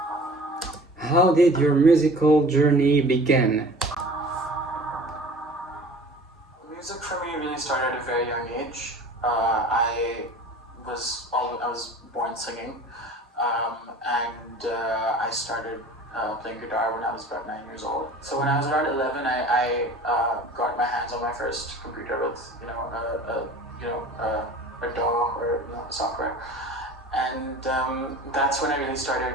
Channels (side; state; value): both; normal; correlation 0.43